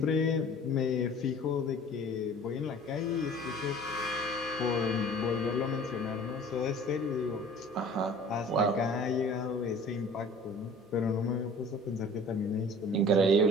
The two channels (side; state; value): both; normal; correlation 0.47